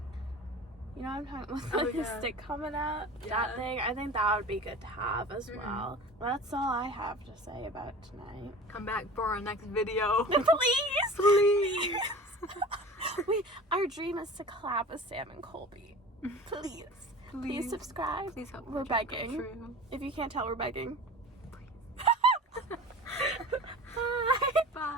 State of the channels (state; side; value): normal; both; correlation 0.38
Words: You know what I'm talking about? With the stick coming out? Yeah. That thing. I think that would be good to have as well. That's all I have to say about tonight. Come back for our next video. Please! Please! Our dream is to collab with Sam and Colby. Please. Please subscribe. Please help. We're begging. If you can't tell, we're begging. Bye.